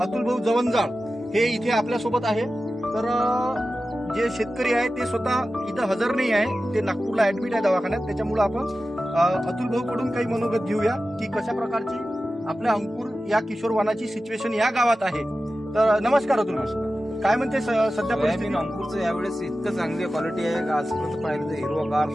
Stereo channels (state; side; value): normal; both; correlation 0.94